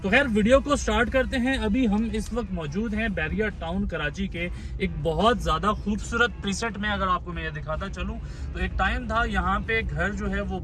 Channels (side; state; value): both; identical; correlation 1.00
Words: तो खैर वीडियो को स्टार्ट करते हैं। अभी हम इस वक्त मौजूद हैं बैरिया टाउन कराची के एक बहुत ज्यादा खूबसूरत प्रीसेट में। अगर आपको मैं ये दिखाता चलूं तो एक टाइम था यहाँ पे घर जो है वो